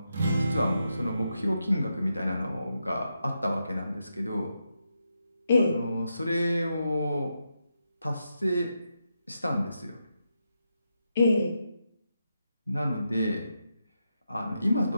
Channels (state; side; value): inverted; both; correlation -0.85